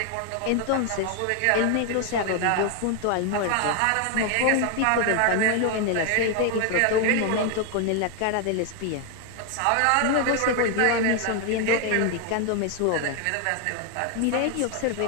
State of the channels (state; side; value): different; both; correlation 0.01